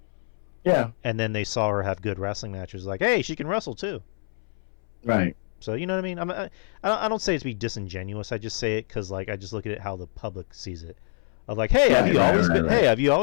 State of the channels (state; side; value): silent; right; 61 dB below the other